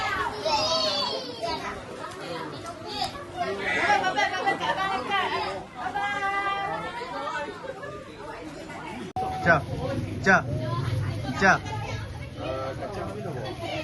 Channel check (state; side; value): identical; both; correlation 1.00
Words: Jap. Jap. Jap.